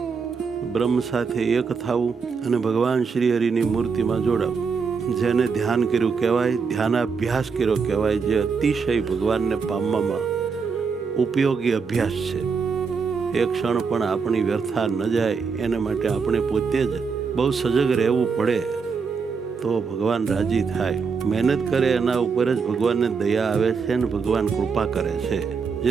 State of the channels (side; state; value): left; quieter; 5.4 dB